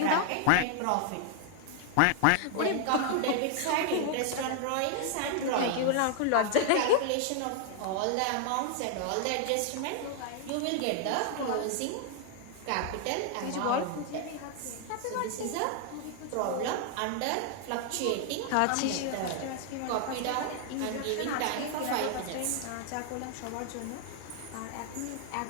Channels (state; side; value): different; both; correlation 0.00